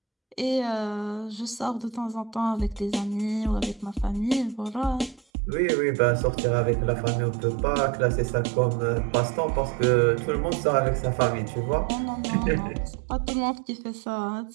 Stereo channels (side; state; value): left; drops out; at 5.2 s